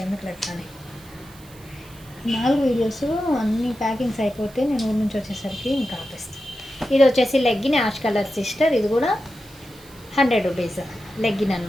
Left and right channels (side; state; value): right; noise; hiss, 24 dB below the sound